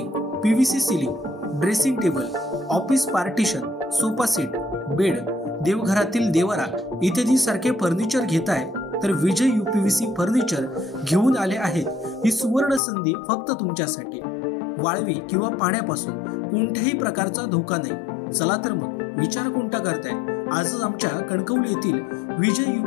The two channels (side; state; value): right; drops out; at 12.8 s